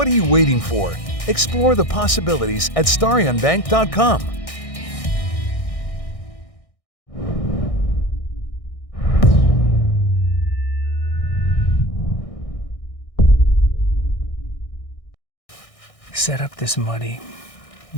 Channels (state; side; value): late; right; 1.6 ms